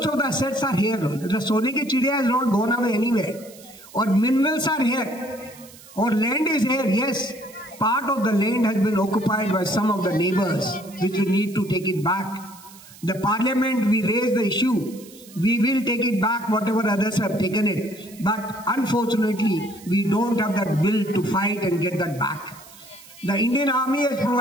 of the assets are here. The Sone ki Chidiya has not gone away anywhere. Or minerals are here. Or land is here. Yes, part of the land has been occupied by some of the neighbors, which we need to take it back. The parliament, we raise the issue. We will take it back, whatever others have taken it. But unfortunately, we don't have that will to fight and get that back. The Indian Army has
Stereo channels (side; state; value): right; noise; hiss, 21 dB below the sound